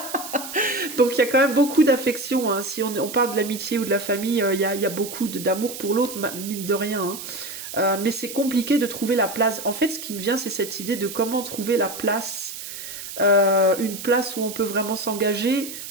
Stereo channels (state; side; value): noise; right; hiss, 10 dB below the sound